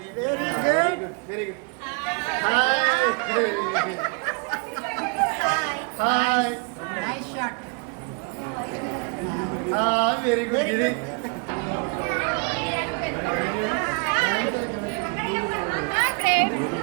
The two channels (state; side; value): quieter; left; 34.2 dB